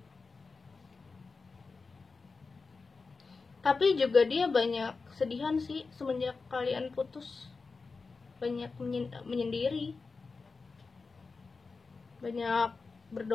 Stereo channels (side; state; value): right; quieter; 4.3 dB